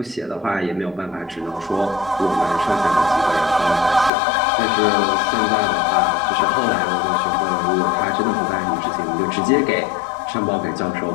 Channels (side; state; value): right; drops out; at 4.1 s